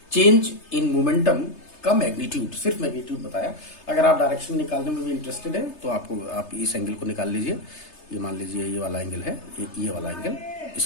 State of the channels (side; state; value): right; late; 3.3 ms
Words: चेंज इन मोमेंटम का मैग्नीट्यूड, सिर्फ मैग्नीट्यूड बताया। अगर आप डायरेक्शन निकालने में भी इंटरेस्टेड है तो आप इस एंगल को निकाल लीजिए। ये मान लीजिए ये वाला एंगल है, ये वाला एंगल,